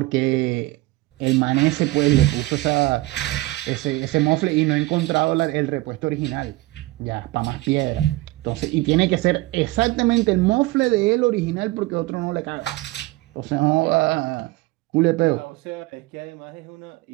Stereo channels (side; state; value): left; quieter; 19.8 dB